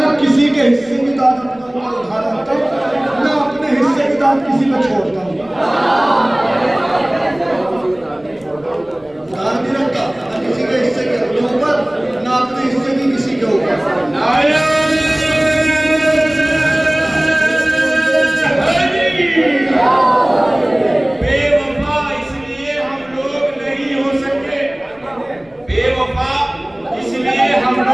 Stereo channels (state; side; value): noise; left; rumble, 29 dB below the sound